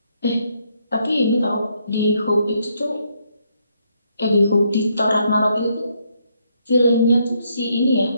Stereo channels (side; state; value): both; inverted; correlation -0.74